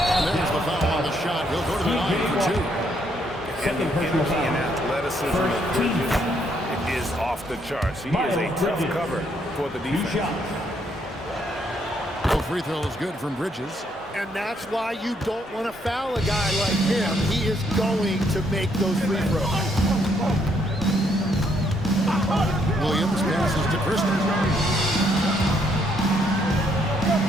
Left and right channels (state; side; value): normal; both; correlation 0.71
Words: there's the foul on the shot. He'll go to the line for 2. And the energy and athleticism of Bridges is off the charts. He is a tough cover for the defense. No free throw is good from Bridges. And that's why you don't want to foul a guy like him. He is going to make those free throws. Williams passes to Christie.